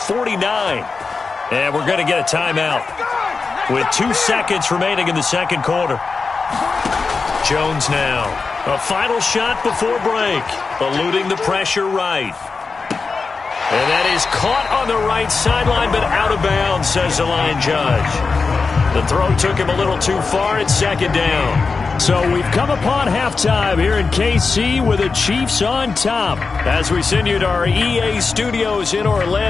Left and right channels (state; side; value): quieter; right; 4.5 dB